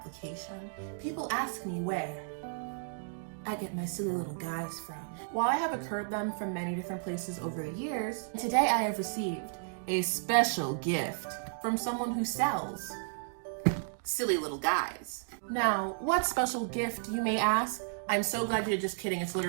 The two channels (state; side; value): silent; left; digital silence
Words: people ask me where I get my silly little guys from. While I have occurred them from many different places over the years, today I have received a special gift from someone who sells silly little guys. Now, what special gift, you may ask? I'm so glad you're just kidding, it's